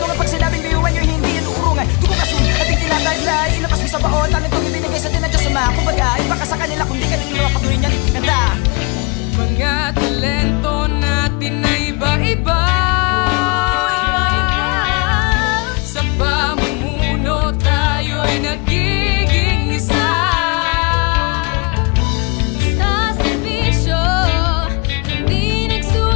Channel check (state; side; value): quieter; right; 31.1 dB